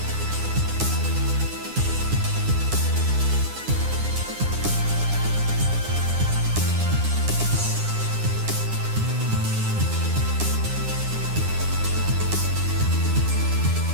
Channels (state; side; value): late; left; 9.8 ms